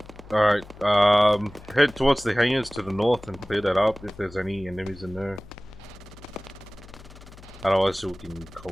Alright, head towards the hangars to the north and clear that up if there's any enemies in there. Otherwise, we can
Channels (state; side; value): noise; left; hum, 19 dB below the sound